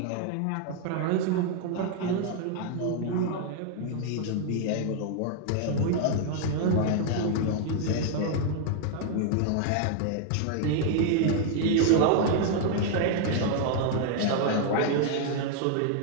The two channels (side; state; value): both; different; correlation 0.00